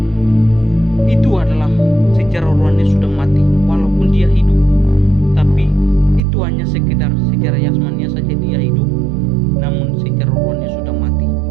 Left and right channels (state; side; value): drops out; left; at 6.2 s